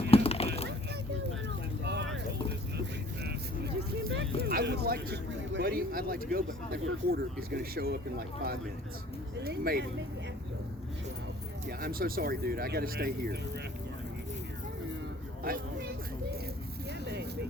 I would like to, buddy. I'd like to go, but that reporter is going to show up in like 5 minutes, maybe. Yeah, I'm so sorry, dude. I got to stay here.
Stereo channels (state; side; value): normal; both; correlation 0.53